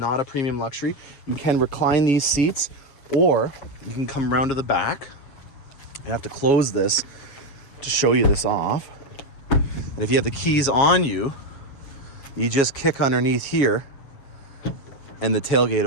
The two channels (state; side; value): late; right; 7.4 ms